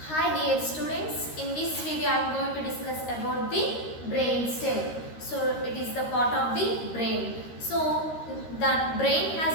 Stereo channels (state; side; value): late; right; 13 ms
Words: Hi dear students, in this video I am going to discuss about the brain stem. So it is the part of the brain. So the brain